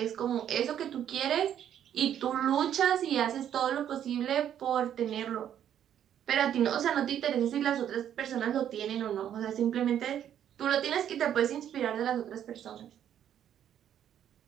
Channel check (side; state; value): left; quieter; 10.0 dB